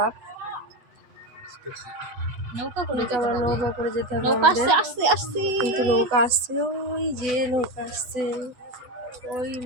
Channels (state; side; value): late; left; 8.3 ms